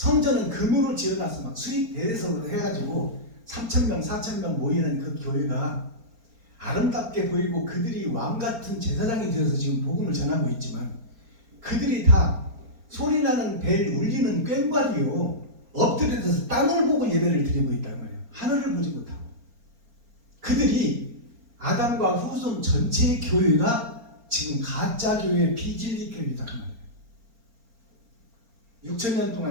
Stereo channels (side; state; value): left; late; 4.3 ms